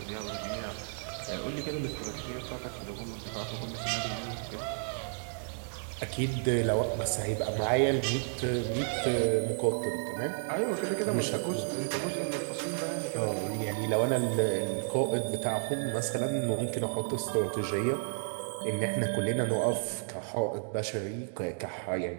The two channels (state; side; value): silent; left; digital silence